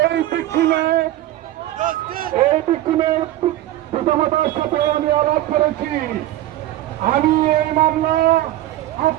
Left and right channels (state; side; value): quieter; left; 14.5 dB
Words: এই বিক্ষুণের পিতামাতার সাথে আমি আলাপ করেছি। আমি এই মামলা